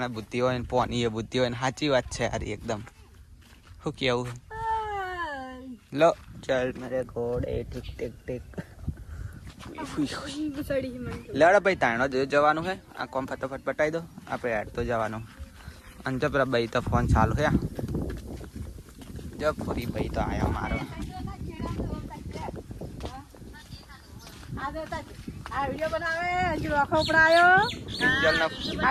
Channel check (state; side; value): identical; both; correlation 1.00